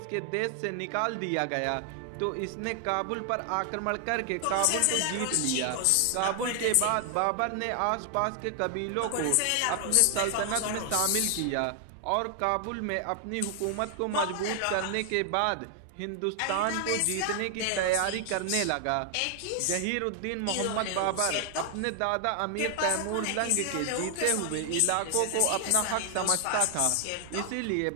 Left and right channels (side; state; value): both; different; correlation 0.00